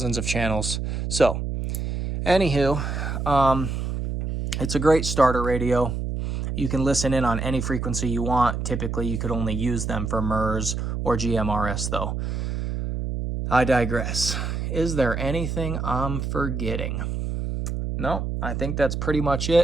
of channels. So, anywho, it's a great starter radio. You can listen in on any frequency you want. Typically, you could only use them for MERS or GMRS, though. I digress. Is there anything I'm forgetting? No, I think that's pretty much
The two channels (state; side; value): noise; right; hum, 3 dB below the sound